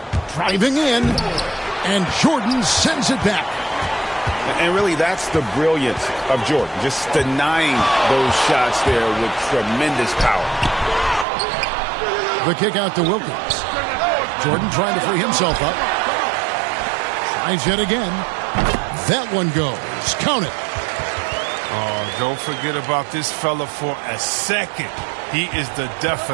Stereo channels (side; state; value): left; drops out; at 11.2 s